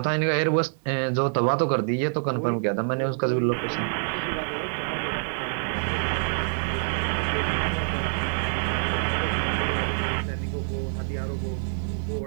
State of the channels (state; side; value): silent; left; 55 dB below the other